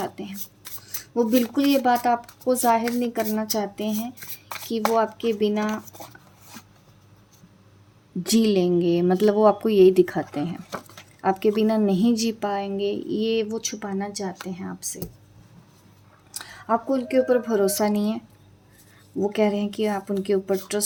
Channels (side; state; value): both; identical; correlation 1.00